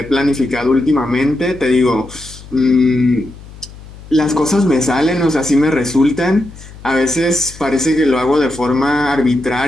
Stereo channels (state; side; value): noise; left; hum, 18 dB below the sound